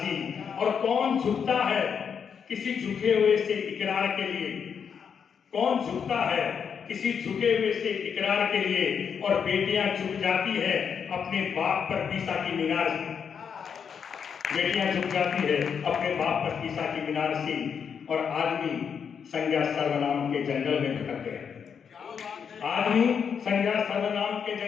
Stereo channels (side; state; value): right; quieter; 7.0 dB